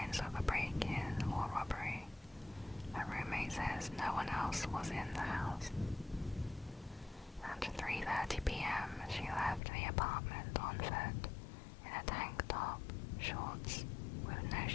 of a break-in or robbery. Her roommate says no one else was in the house. At 3:30 p.m., she left the apartment on foot, in a tank top, shorts, with no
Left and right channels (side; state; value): right; drops out; at 9.6 s